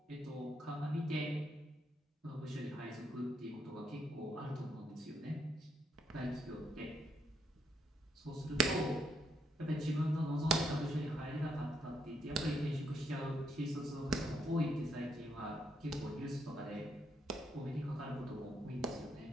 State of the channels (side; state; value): both; normal; correlation 0.75